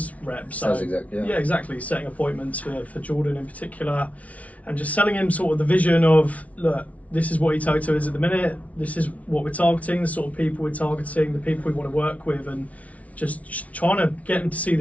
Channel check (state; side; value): late; right; 0.068 ms